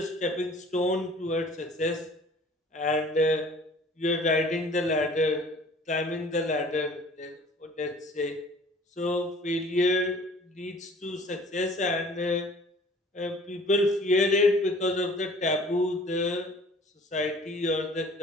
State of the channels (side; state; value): both; normal; correlation 0.50